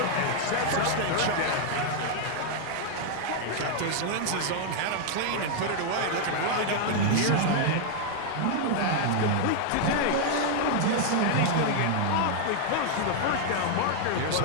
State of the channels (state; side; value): different; both; correlation 0.00